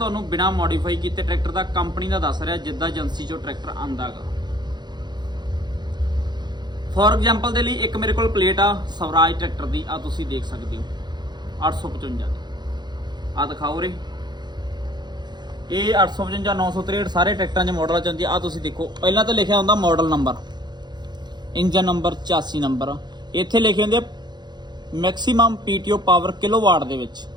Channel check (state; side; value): late; left; 0.21 ms